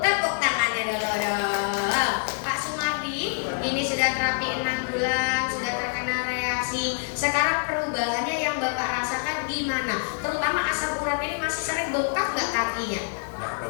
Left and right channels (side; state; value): right; silent; digital silence